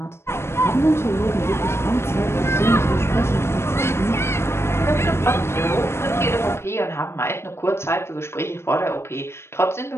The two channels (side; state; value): right; late; 0.12 ms